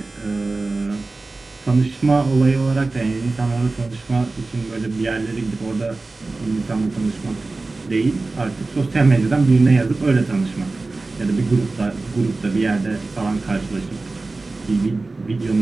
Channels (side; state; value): left; quieter; 3.4 dB